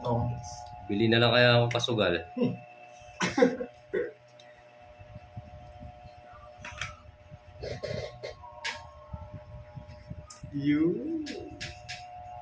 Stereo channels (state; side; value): identical; both; correlation 1.00